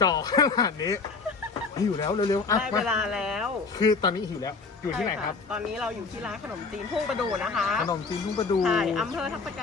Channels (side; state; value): right; quieter; 4.5 dB